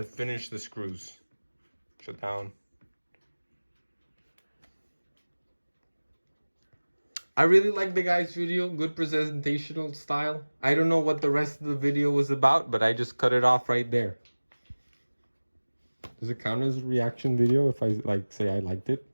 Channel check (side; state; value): both; inverted; correlation -1.00